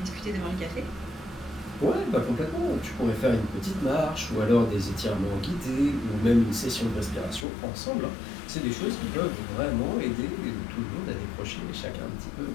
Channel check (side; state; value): right; drops out; at 7.5 s